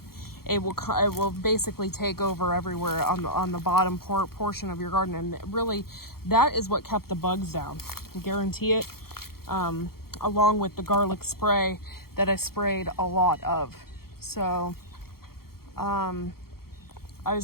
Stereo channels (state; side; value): late; right; 0.94 ms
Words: it will basically take over everywhere on the bottom portion of your garden. And really, that is what kept the bugs down. I guarantee it. Along with the garlic spray that I sprayed a lot of. So I